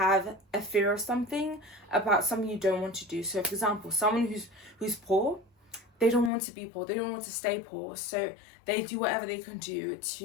a fear of something, about something you don't want to do. So for example, someone who's poor, they don't want to be poor, they don't want to stay poor, so they do whatever they can do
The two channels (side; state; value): right; drops out; at 6.3 s